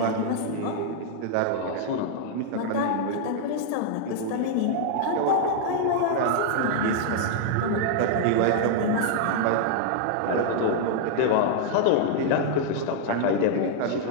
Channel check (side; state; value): both; different; correlation -0.01